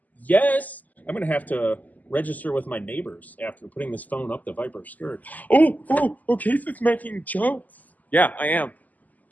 Yes. I'm going to have to register with my neighbors after putting this phone up the Viper skirt. Oh, Casey's making jokes. Yeah, I am.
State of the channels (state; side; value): late; right; 0.080 ms